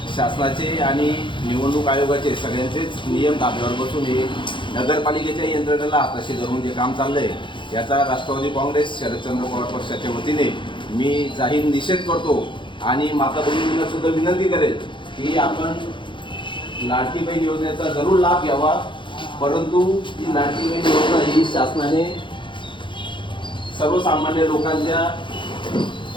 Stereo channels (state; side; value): late; right; 0.23 ms